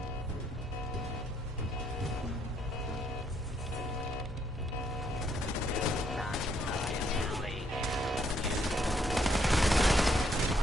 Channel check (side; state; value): both; normal; correlation 0.71